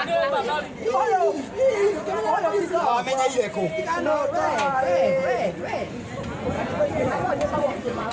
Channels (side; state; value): both; identical; correlation 1.00